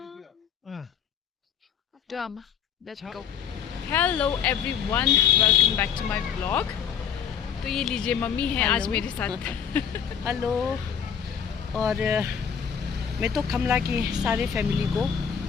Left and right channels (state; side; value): quieter; right; 7.8 dB